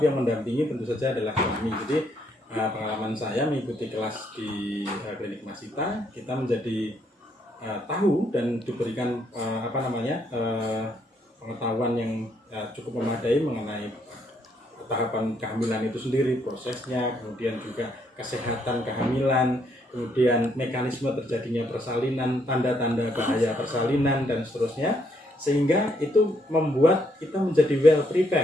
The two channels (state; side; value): normal; both; correlation 0.72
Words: yang mendampingi tentu saja adalah suami. Jadi pengalaman saya mengikuti kelas di klinik Masita, kita menjadi tahu dan diberikan pengetahuan yang cukup memadai mengenai tahapan kehamilan itu sendiri, prosesnya, kemudian juga kesehatan kehamilan, kemudian mekanisme terjadinya persalinan, tanda-tanda bahaya persalinan, dan seterusnya, sehingga itu membuat kita menjadi well